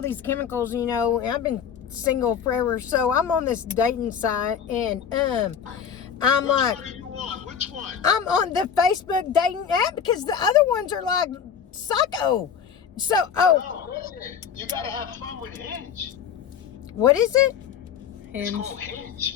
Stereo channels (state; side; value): quieter; right; 7.6 dB